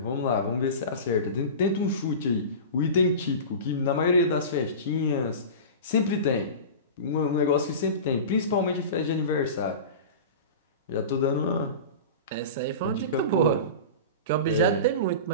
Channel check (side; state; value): both; inverted; correlation -0.31